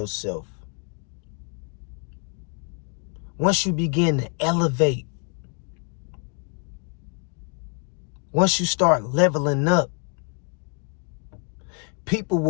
Once you begin to elevate, once you start leveling up, people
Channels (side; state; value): right; quieter; 38.4 dB